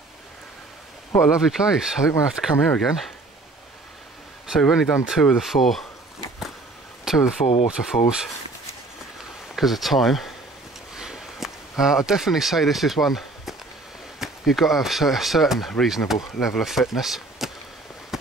What a lovely place. I think we'll have to come here again. So we've only done two of the four waterfalls because of time. I'd definitely say this is one you've got to have a certain reasonable level of fitness.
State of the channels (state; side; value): quieter; left; 3.1 dB